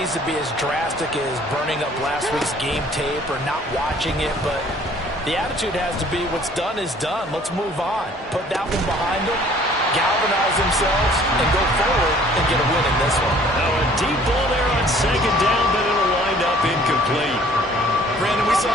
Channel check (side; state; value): both; normal; correlation 0.55